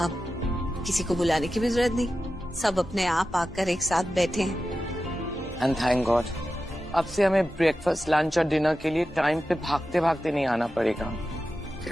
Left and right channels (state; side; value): normal; both; correlation 0.92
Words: अब किसी को बुलाने की भी जरूरत नहीं, सब अपने आप आकर एक साथ बैठे हैं। एंड थैंक गॉड, अब से हमें ब्रेकफास्ट, लंच और डिनर के लिए टाइम पे भागते भागते नहीं आना पड़ेगा।